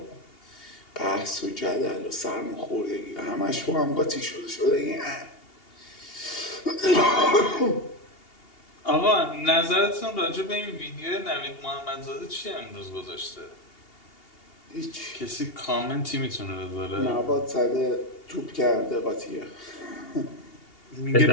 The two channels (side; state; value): right; late; 2.8 ms